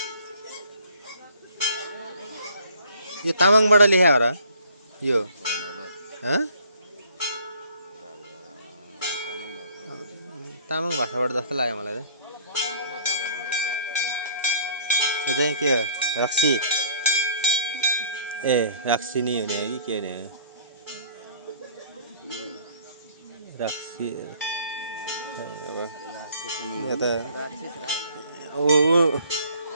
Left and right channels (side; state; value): both; inverted; correlation -0.56